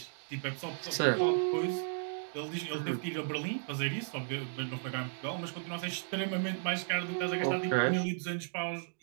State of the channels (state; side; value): silent; left; digital silence